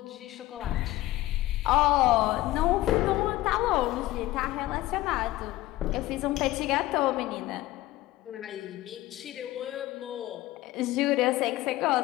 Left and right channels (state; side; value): quieter; right; 17.0 dB